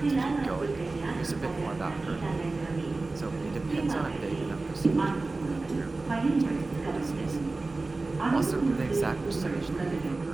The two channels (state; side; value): quieter; left; 3.4 dB